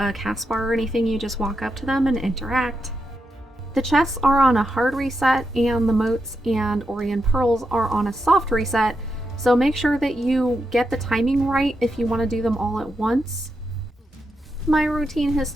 cast bar or anything, you just walk up to them and interact. The chests are on a hard reset, and the Motes and Orrian Pearls are on a soft reset, so make sure that you get the timing right if you want to do them all at once. My routine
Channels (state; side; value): normal; both; correlation 0.85